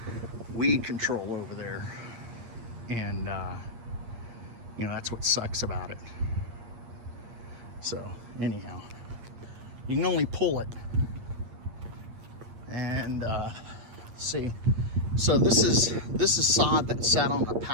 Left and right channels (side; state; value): left; late; 8.7 ms